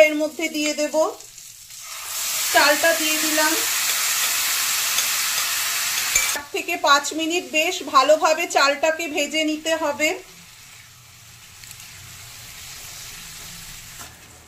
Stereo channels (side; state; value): both; identical; correlation 1.00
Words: এর মধ্যে দিয়ে দেব। চালটা দিয়ে দিলাম। 4 থেকে 5 মিনিট বেশ ভালোভাবে চালটাকে ভেজে নিতে হবে।